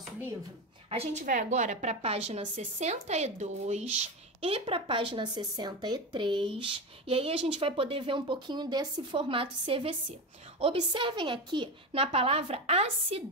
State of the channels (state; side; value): normal; both; correlation 0.19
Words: livro? A gente vai agora para a página 62 e para a página 63, e aí a gente vai poder ver um pouquinho desse formato CVC. Observem aqui na palavra